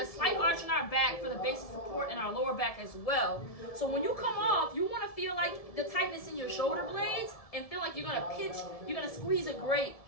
slight arch in our back for the basic support in our lower back as well. So when you come off, you want to feel like the tightness in your shoulder blades and feel like you're going to pinch, you're going to squeeze a grate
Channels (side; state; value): right; late; 1.7 ms